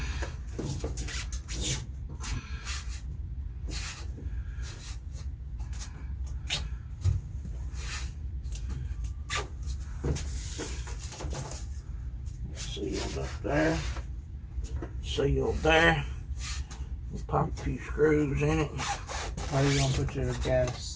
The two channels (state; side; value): identical; both; correlation 1.00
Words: Sealed up there. Sealed there. We'll pop a few screws in it. How are you gonna put your